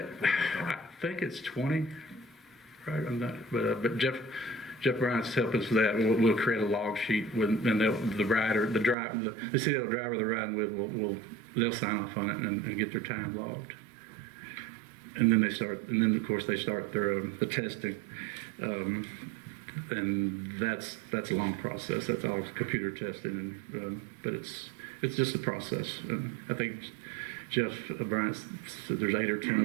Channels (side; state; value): left; drops out; at 9.0 s